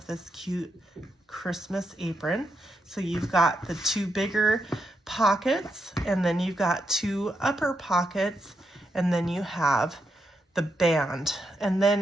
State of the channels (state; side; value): normal; both; correlation 0.83